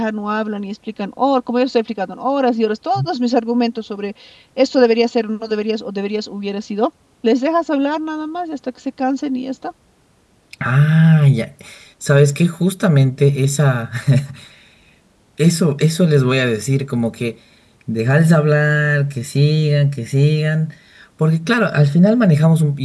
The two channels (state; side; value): identical; both; correlation 1.00